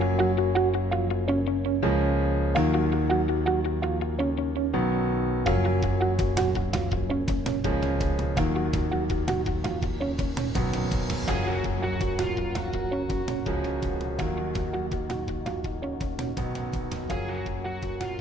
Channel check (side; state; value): both; normal; correlation 0.70